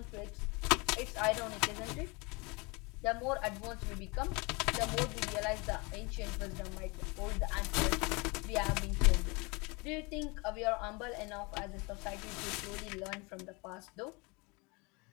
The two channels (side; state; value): right; quieter; 27.9 dB